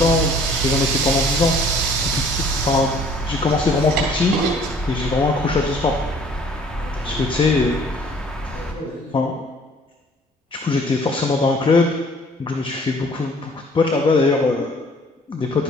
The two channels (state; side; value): normal; both; correlation 0.55